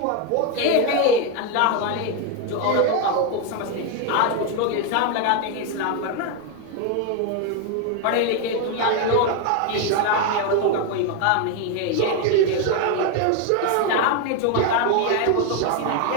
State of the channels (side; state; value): both; different; correlation 0.01